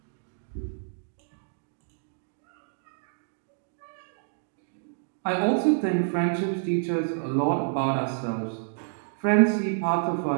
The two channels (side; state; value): left; silent; digital silence